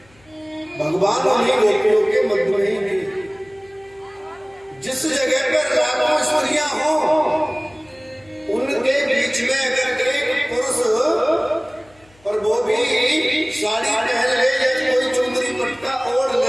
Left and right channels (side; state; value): left; noise; hum, 30 dB below the sound